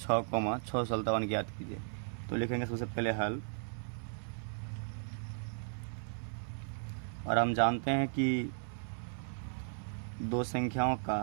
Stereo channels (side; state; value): left; silent; 54 dB below the other